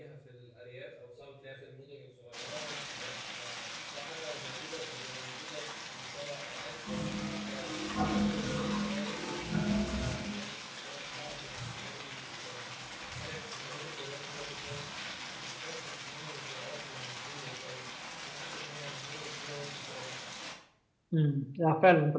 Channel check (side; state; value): both; identical; correlation 1.00